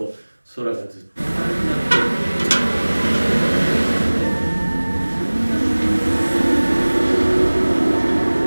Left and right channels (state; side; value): inverted; both; correlation -1.00